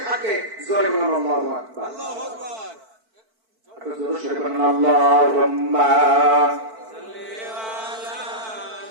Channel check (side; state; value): left; late; 4.5 ms